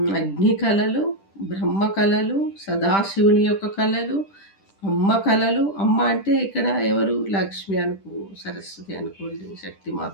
అగ్ని కళలు, బ్రహ్మ కళలు, సదాశివుని యొక్క కళలు, అమ్మ కళలు. అమ్మ అంటే ఇక్కడ ఎవరు? లక్ష్మి అనుకో, సరస్వతి అనుకోండి, శక్తిమాత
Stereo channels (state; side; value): late; right; 10 ms